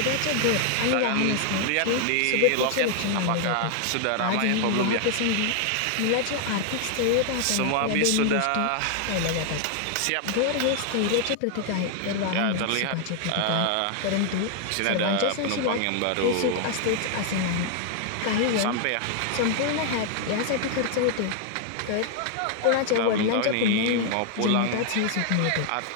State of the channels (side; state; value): both; different; correlation 0.00